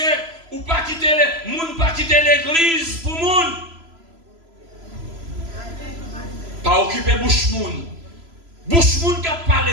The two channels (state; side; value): late; left; 3.0 ms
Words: Ou pas quitter l'église pour moun. Pas occuper bouche moun. Bouche moun qui a